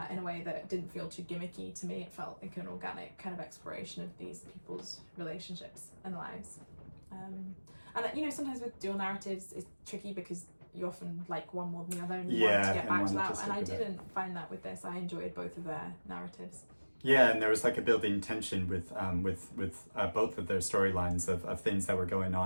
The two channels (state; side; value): inverted; both; correlation -1.00